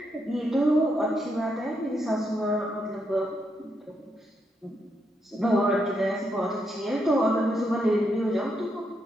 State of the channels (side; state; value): both; normal; correlation 0.80